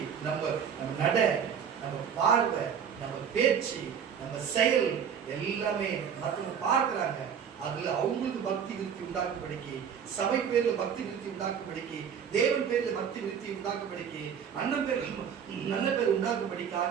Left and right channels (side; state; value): left; quieter; 7.7 dB